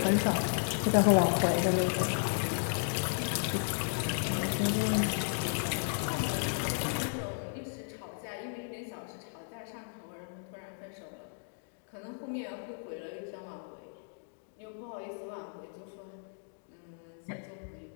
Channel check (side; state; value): right; silent; digital silence